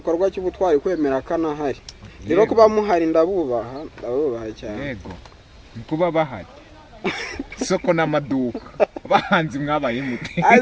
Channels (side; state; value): both; identical; correlation 1.00